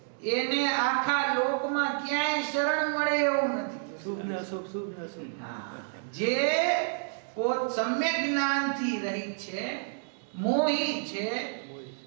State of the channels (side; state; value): left; silent; digital silence